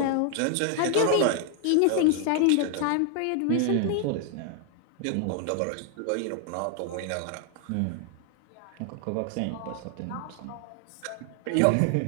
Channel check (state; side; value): different; both; correlation 0.00